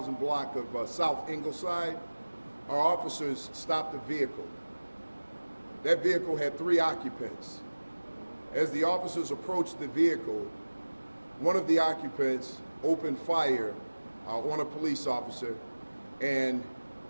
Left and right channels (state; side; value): inverted; both; correlation -1.00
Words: block of South Ingleside, our officers stopped a vehicle. That vehicle had 3 occupants. As the officers approached the vehicle, one of the occupants opened fire on a police officer and